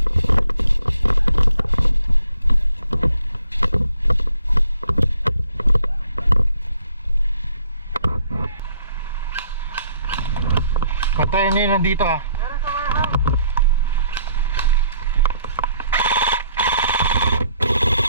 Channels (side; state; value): both; inverted; correlation -0.66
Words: Patayin niya nandito ah. Meron sa warehouse.